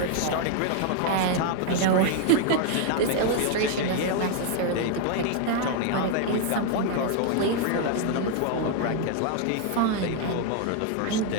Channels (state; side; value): different; both; correlation 0.00